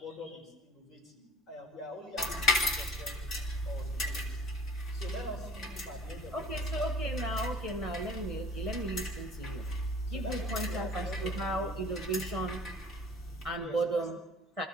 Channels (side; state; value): both; normal; correlation 0.47